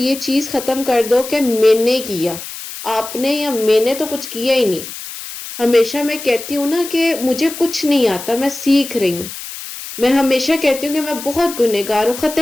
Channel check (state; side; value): noise; left; hiss, 11 dB below the sound